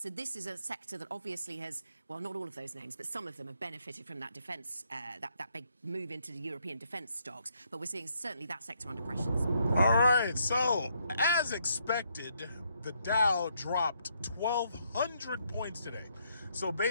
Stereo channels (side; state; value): both; inverted; correlation -0.73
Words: this is a sector that obviously has, well, not all of those names, but some of them have benefited from that defence, that big move into the European defence stocks. But we're seeing certainly that sector under pressures. All right, so as expected, the Dow dropped 1,200 points today. So